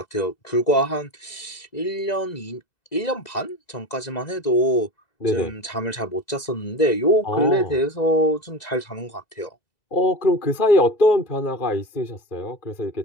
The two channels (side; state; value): right; late; 2.0 ms